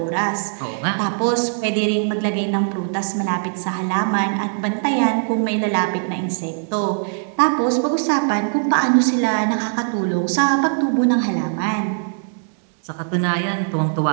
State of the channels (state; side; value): silent; left; 65 dB below the other